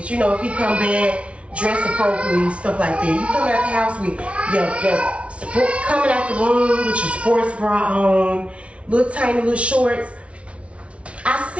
You know, if he come back, dress appropriately, stuff like that. You coming out the house with coming out the room with your sports bra on, little tiny little shorts. I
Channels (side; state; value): left; late; 0.062 ms